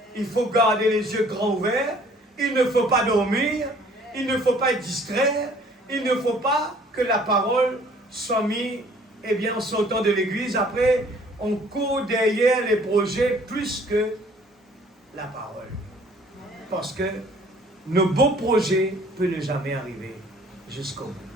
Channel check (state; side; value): normal; both; correlation 0.56